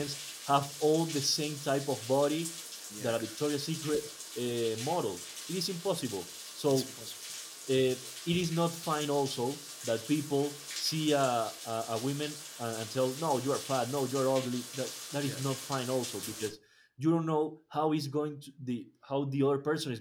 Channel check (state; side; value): identical; both; correlation 1.00